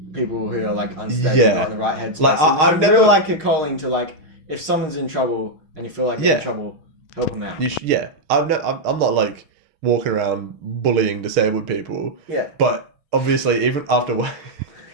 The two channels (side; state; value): left; late; 6.4 ms